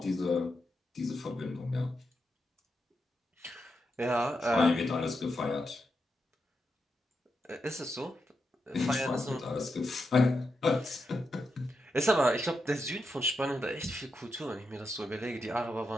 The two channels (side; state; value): both; normal; correlation 0.86